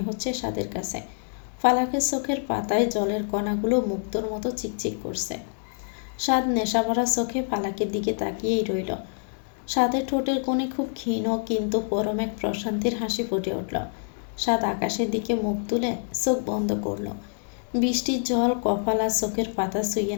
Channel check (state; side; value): silent; right; digital silence